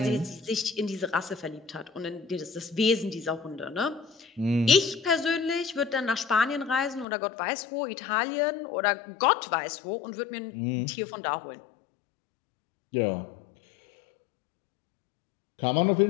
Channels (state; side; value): drops out; right; at 7.1 s